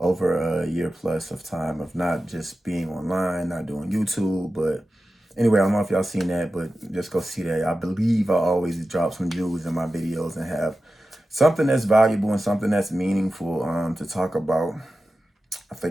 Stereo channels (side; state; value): both; normal; correlation 0.93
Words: a year plus of time of not just being online, not doing YouTube, but anyway, I don't know if y'all seen that, but just go see that. I believe I always drop some jewels in my videos and have something that's valuable and something that's meaningful to talk about. I